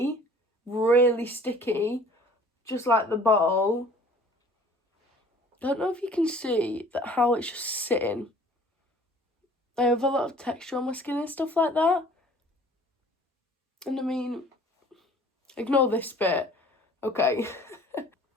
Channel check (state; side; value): normal; both; correlation 0.51